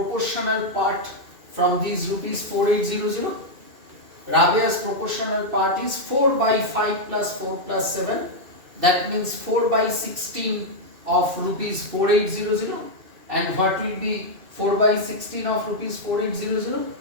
part from these rupees 4800? Rabea's proportional part is 4 by 5 plus 4 plus 7. That means 4 by 16 of rupees 4800. And what will be 4 by 16 of rupees 4800?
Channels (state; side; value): late; left; 2.6 ms